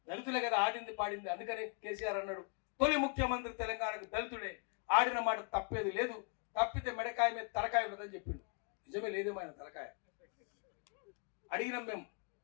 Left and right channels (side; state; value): right; quieter; 38.4 dB